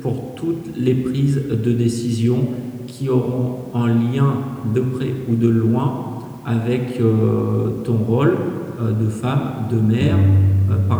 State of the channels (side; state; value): both; identical; correlation 1.00